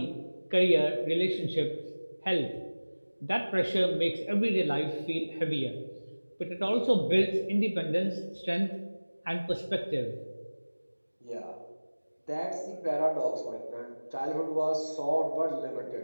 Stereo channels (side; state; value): both; inverted; correlation -1.00